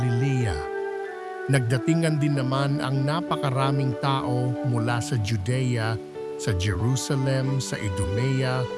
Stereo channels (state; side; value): identical; both; correlation 1.00